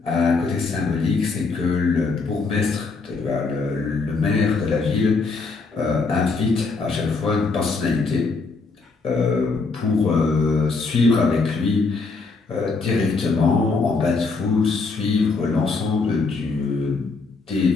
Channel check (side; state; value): right; quieter; 4.1 dB